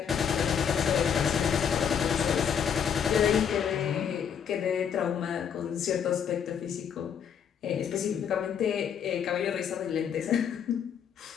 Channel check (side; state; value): right; quieter; 7.8 dB